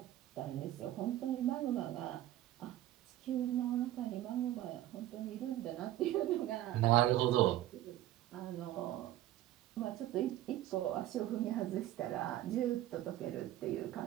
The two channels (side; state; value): left; quieter; 13.9 dB